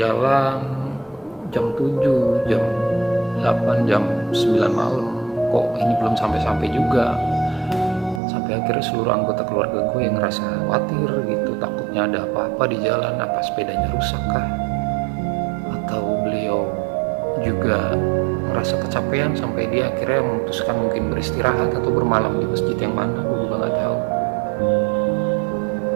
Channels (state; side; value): drops out; left; at 8.2 s